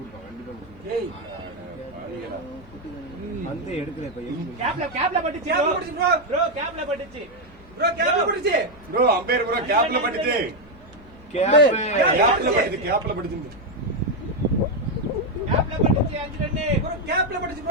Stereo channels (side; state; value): both; normal; correlation 0.03